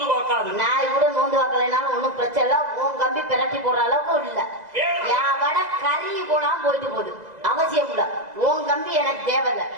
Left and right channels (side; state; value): left; late; 2.0 ms